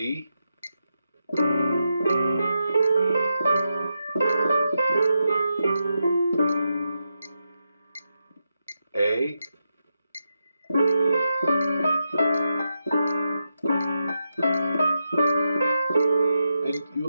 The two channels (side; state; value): both; inverted; correlation -0.86